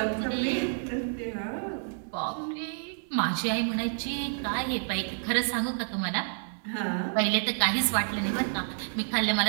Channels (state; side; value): silent; left; digital silence